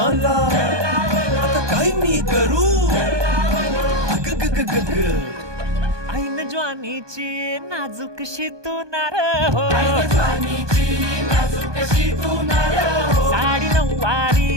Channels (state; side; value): late; left; 1.2 ms